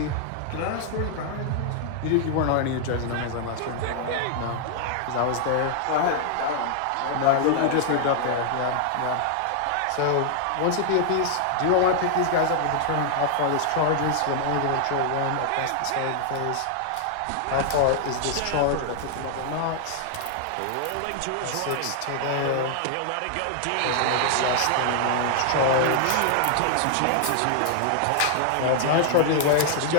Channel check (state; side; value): different; both; correlation 0.00